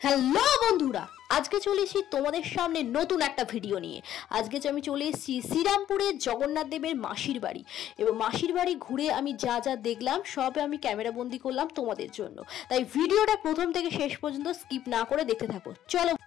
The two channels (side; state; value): right; quieter; 11.8 dB